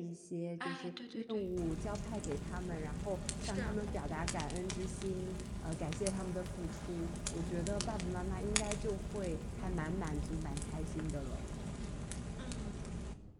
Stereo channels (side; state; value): both; identical; correlation 1.00